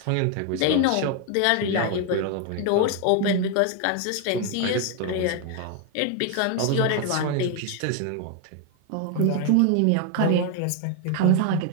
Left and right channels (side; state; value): both; different; correlation 0.01